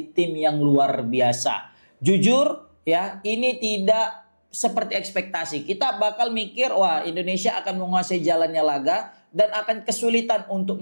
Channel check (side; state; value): both; inverted; correlation -1.00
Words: tim yang luar biasa. Jujur ya, ini tidak seperti ekspektasi. Kita bakal mikir, wah Indonesia akan menguasai jalannya laga dan akan kesulitan untuk